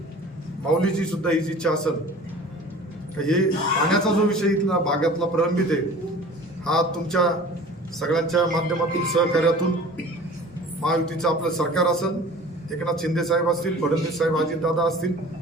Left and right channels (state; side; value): normal; both; correlation 0.44